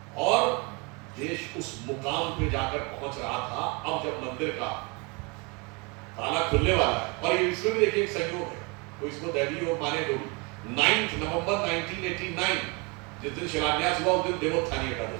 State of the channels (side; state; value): left; quieter; 29.7 dB